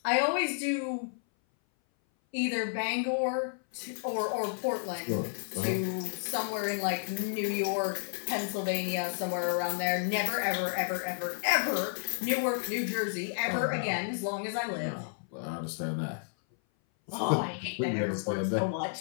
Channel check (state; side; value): silent; right; 57 dB below the other